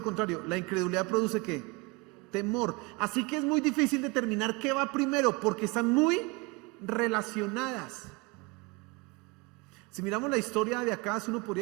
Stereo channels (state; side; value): quieter; left; 26.3 dB